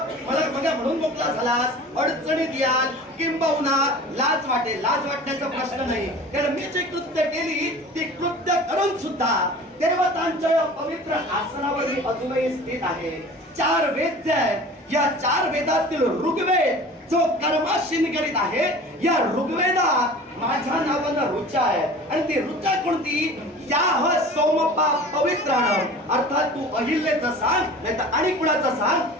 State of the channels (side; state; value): both; normal; correlation 0.40